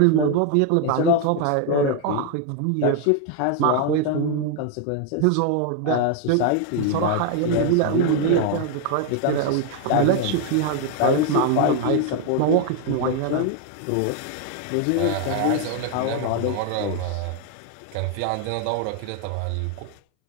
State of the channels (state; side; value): different; both; correlation 0.01